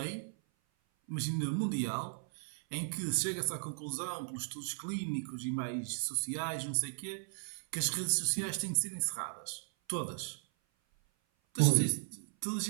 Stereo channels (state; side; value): silent; left; 54 dB below the other